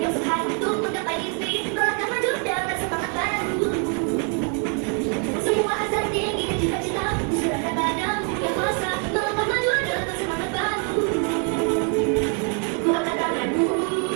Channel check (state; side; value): quieter; left; 39.1 dB